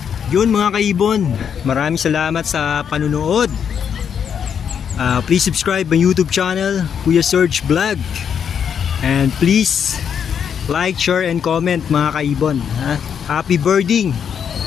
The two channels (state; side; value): quieter; right; 7.7 dB